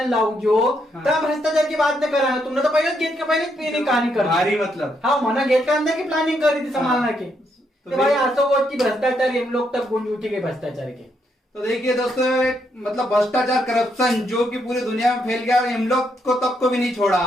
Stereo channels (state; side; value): normal; both; correlation 0.77